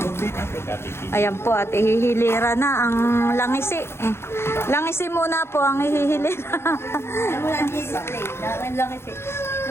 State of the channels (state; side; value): late; right; 0.12 ms